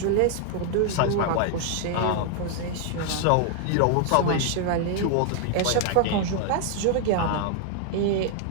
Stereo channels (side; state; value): both; different; correlation 0.00